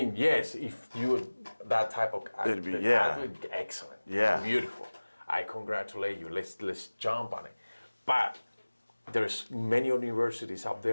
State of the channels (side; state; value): both; inverted; correlation -1.00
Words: yes, if you're that type of athlete, excellent, beautiful. I congratulate you. Let's jump on it. But there's many universities out